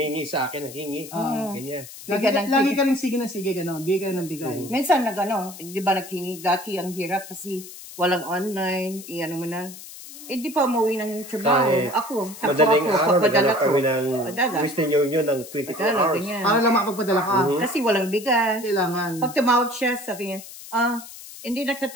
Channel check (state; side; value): noise; left; hiss, 15 dB below the sound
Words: sa akin, hingi. Ganyan. lagi ka rin sige ng sige, gano'n. Bigay ka ng bigay. Minsan di ba naghingi, dati ang hirap kasi walang online, ano mo na. Di pa umuwi ng trabaho. Kahit Ako, Madaling araw, papadala naghanap ko. kami ng Padala. Western Union ng 24 Padala, hours. ganyan. Para lang makapagpadala ka. Kasi walang bigas. Kailangan. Pag tumawag siya, sabi niya, hindi